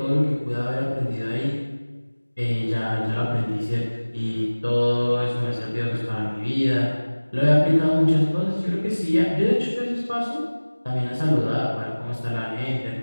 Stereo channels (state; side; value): inverted; both; correlation -1.00